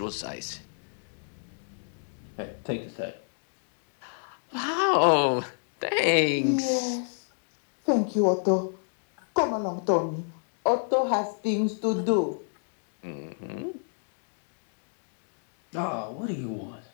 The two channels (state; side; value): silent; right; 58 dB below the other